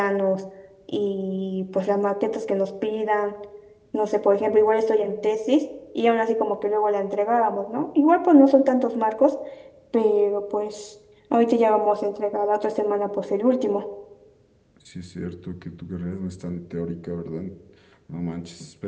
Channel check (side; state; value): both; identical; correlation 1.00